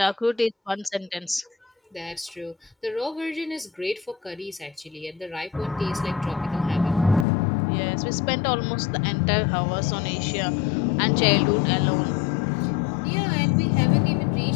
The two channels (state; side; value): drops out; right; at 7.2 s